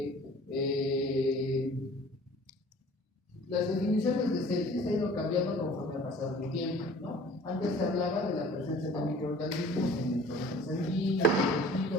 las definiciones de sepsis han ido cambiando conforme ha pasado el tiempo, ¿no? Antes se hablaba de la presencia de microorganismos en el torrente sanguíneo, en el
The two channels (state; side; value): normal; both; correlation 0.49